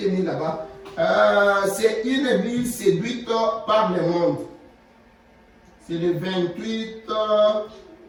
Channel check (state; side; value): identical; both; correlation 1.00